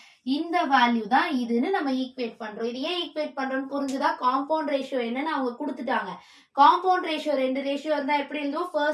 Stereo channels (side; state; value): both; identical; correlation 1.00